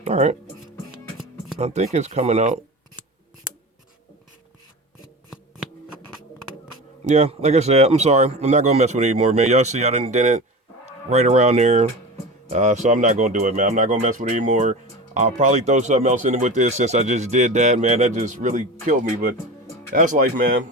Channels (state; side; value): normal; both; correlation 0.30